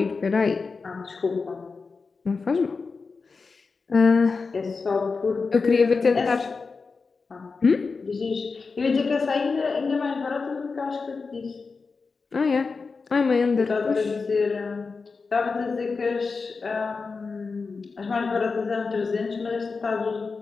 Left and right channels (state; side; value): quieter; right; 4.5 dB